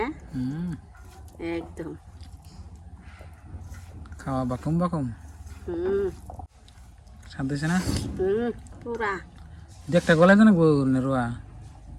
হুম একদম খাওয়া বাকুম বাকুম হুম স্বাদ দিছে না পুরা দেখটা গলায় তো নাকবো রোয়া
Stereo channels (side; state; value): both; identical; correlation 1.00